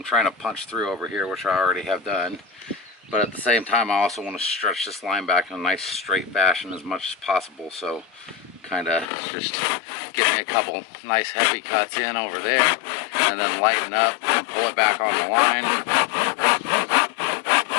trying to punch through over here, which I already have done. But at the same time, I also want to stretch this line back in a nice straight fashion as much as possible. So kind of just get me a couple nice heavy cuts in over there and then lighten up and pull it back on the line.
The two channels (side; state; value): right; drops out; at 9.1 s